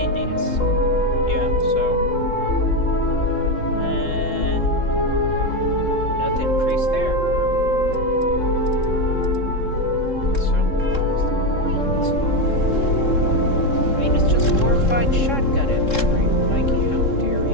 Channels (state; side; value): late; right; 3.7 ms